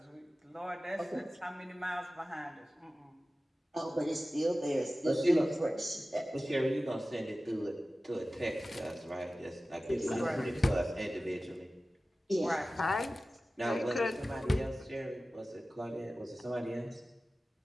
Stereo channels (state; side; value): normal; both; correlation 0.96